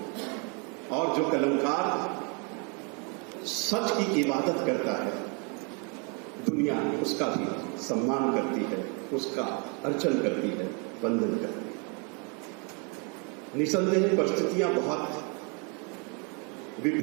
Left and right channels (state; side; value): quieter; left; 35.1 dB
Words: और जो कलमकार सच की इबादत करता है, दुनिया उसका भी सम्मान करती है, उसका अर्चन करती है, वंदन करती है। निसंदेह परिस्थितियां बहुत